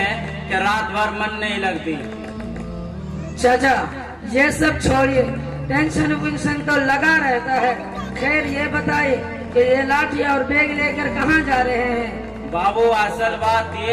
कि रात भर मन नहीं लगती। चाचा ये सब छोड़िए, टेंशन विंशन तो लगा रहता है। खैर ये बताइए कि ये लाठी और बैग लेकर कहाँ जा रहे हैं? बाबू असल बात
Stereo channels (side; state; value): both; identical; correlation 1.00